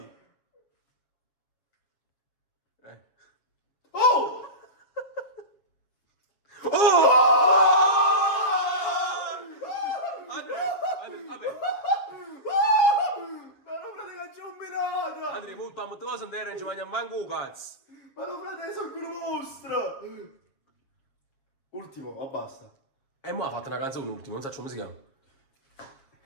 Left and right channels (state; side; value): late; right; 7.3 ms